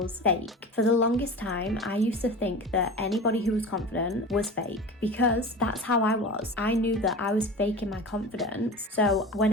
fake. For the longest time, I used to think that anybody who was confident was fake, because that's how I was. I knew that I was faking my confidence. So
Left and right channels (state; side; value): normal; both; correlation 0.33